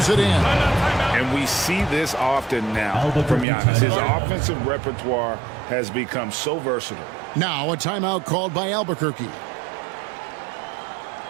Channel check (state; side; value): drops out; left; at 3.5 s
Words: it in. And we see this often now from Giannis. His offensive repertoire has become so versatile. Now a timeout called by Albuquerque.